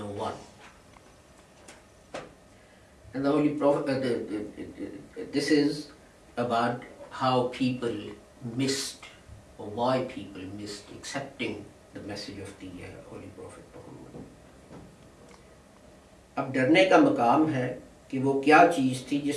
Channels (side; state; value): both; identical; correlation 1.00